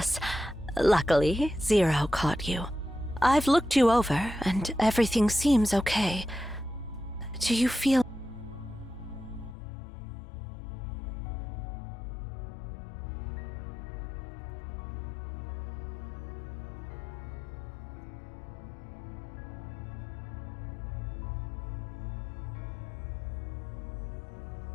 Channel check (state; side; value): drops out; right; at 9.6 s